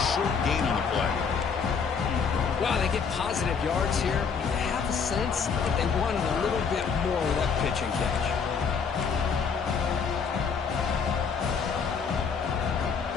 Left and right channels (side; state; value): right; quieter; 6.0 dB